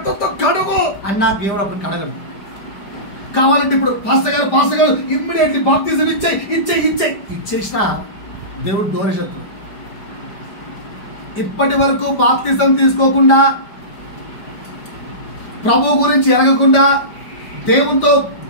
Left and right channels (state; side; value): late; right; 5.0 ms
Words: కడుగు అన్నా దేవుడు అప్పుడు కడగడు. కావాలంటే ఇప్పుడు పాస్టర్ గారు ఇమ్మీడియట్లీ బాప్టిజం ఇచ్చేసిన దేవుడు దూరశత్రుడు. ఇప్పటి వరకు బాప్తిజం తీసుకోకుండా, ప్రభు గురించి ఎరగకుండా, దేవునితో